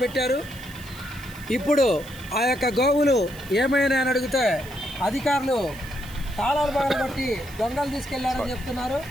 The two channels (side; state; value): right; noise; hiss, 19 dB below the sound